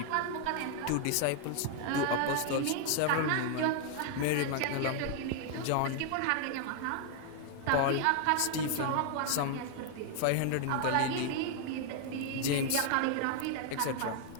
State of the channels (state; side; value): different; both; correlation 0.00